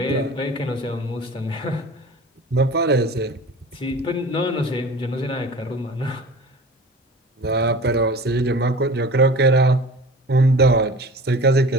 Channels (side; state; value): both; normal; correlation 0.40